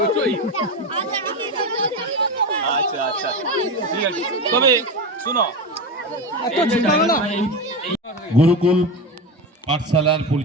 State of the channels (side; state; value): both; normal; correlation 0.19